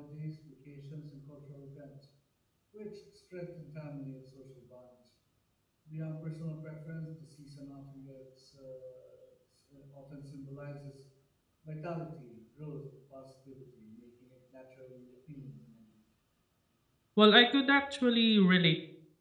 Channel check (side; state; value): both; identical; correlation 1.00